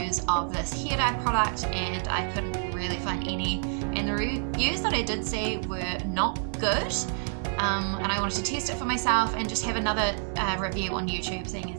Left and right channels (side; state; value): left; silent; digital silence